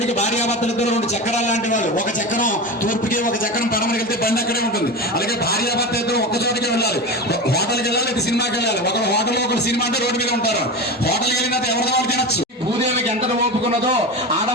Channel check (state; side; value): normal; both; correlation 0.25